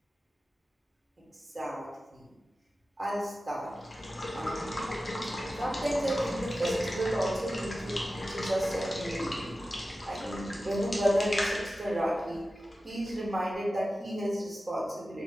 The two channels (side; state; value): both; normal; correlation 0.94